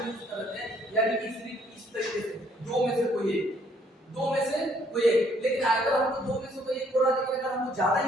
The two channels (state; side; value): normal; both; correlation 0.65